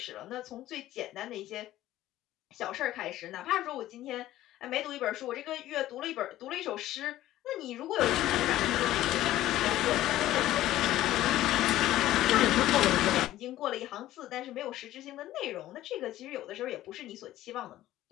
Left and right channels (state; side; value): quieter; right; 14.5 dB